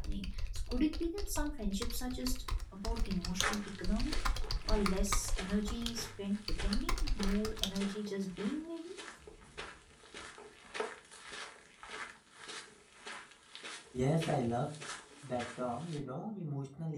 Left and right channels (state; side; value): identical; both; correlation 1.00